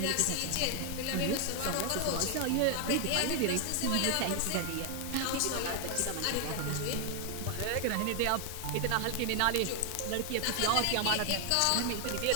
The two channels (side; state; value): both; different; correlation 0.00